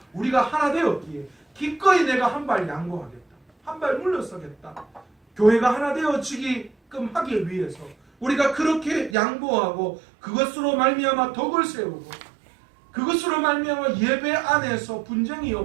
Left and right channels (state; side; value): drops out; left; at 9.2 s